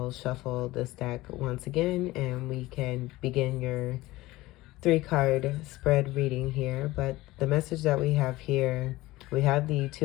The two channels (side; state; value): right; quieter; 18.6 dB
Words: shuffle this deck once again, and we can begin your 3-card spread reading here. But the message that we have here, we have the